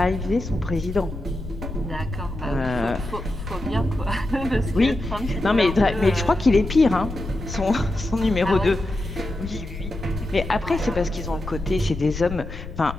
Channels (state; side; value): noise; left; rumble, 9 dB below the sound